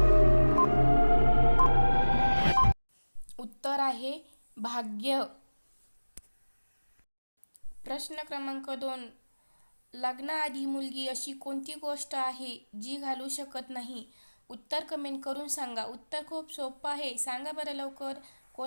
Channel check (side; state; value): both; inverted; correlation -1.00